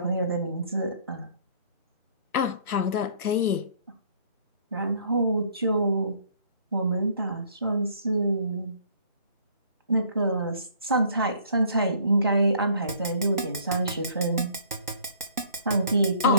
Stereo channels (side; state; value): both; inverted; correlation -0.58